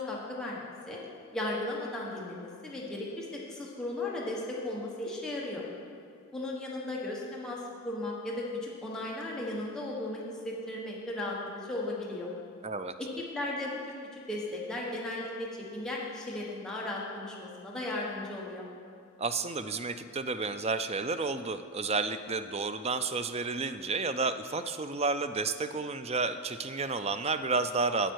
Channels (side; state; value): both; normal; correlation 0.16